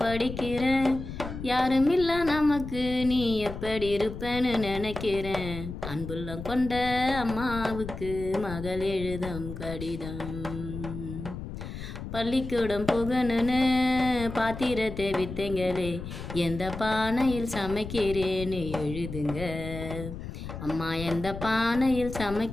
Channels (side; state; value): left; noise; rumble, 9 dB below the sound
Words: படிக்கிறேன். யாரும் இல்ல நமக்கு, நீ எப்படி இருப்பேன்னு நினைக்கிறேன். அன்புள்ளம் கொண்ட அம்மாவுக்கு மகள் எழுதும் கடிதம். பள்ளிக்கூடம் புகணுன்னு பாத்திரத்தை வித்தைங்களே, எந்த பானையில் சமைக்கிறேன்னு எழுதுங்க. அம்மா எந்த பானையில்